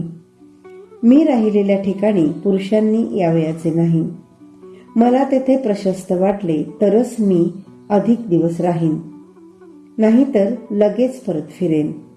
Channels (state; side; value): identical; both; correlation 1.00